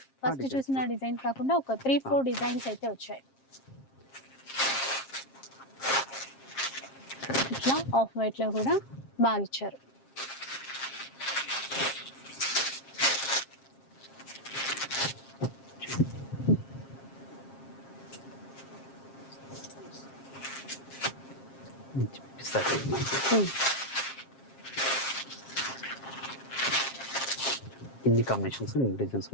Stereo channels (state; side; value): late; right; 7.5 ms